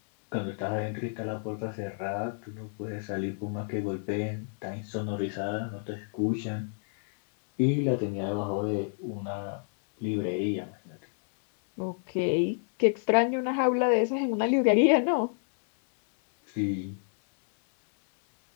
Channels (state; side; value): silent; right; 58 dB below the other